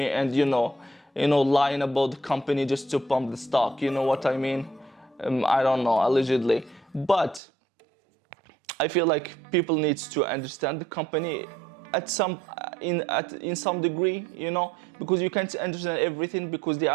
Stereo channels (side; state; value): left; drops out; at 7.4 s